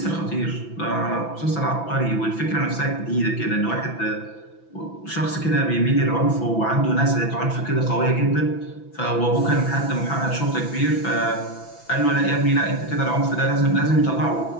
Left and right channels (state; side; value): late; right; 6.0 ms